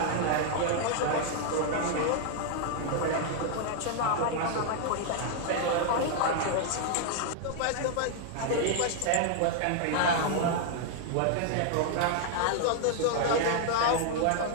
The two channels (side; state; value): both; different; correlation 0.00